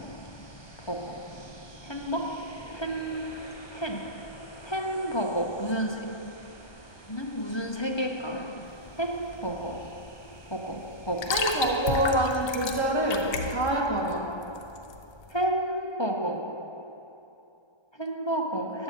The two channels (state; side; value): late; right; 1.3 ms